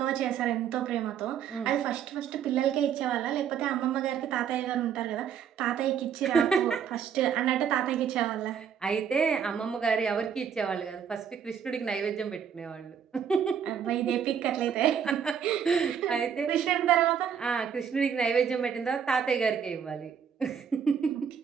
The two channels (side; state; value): left; quieter; 7.8 dB